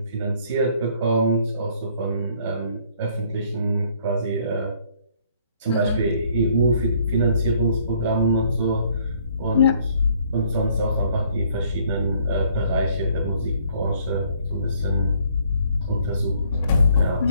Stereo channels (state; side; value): inverted; both; correlation -0.63